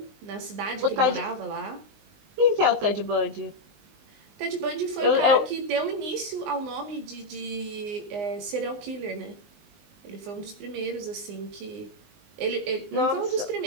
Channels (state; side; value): late; left; 19 ms